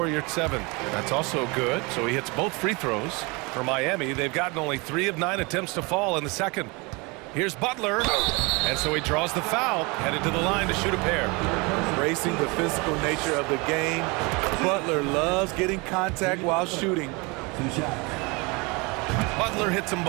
Yurt 7. That's also good, so he hits both free throws. For Miami, they've gotten only 3 of 9 attempts to fall in the second. Here's Butler, and so he draws the foul, headed to the line to shoot a pair. Racing the physical nature of the game, Butler loves getting contact while shooting. Butler hits them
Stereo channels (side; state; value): left; quieter; 27.5 dB